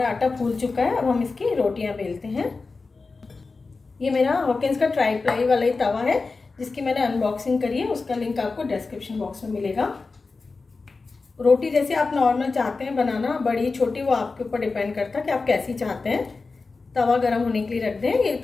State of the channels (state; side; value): quieter; right; 4.0 dB